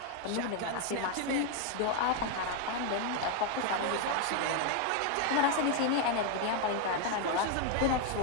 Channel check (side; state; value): both; different; correlation 0.00